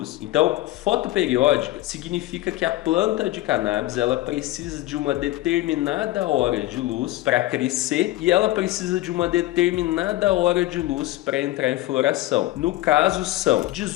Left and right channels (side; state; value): right; quieter; 16.7 dB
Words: Então, fotoperiódica significa que a planta de cannabis ela precisa de uma determinada hora de luz para crescer e ela precisa de uma determinada hora de luz para entrar em floração. No caso, são